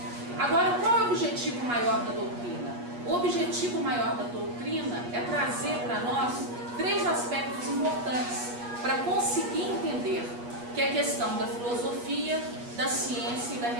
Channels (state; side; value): late; left; 8.3 ms